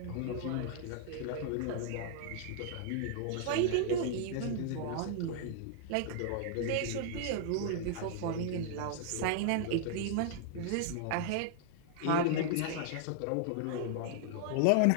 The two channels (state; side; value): different; both; correlation -0.01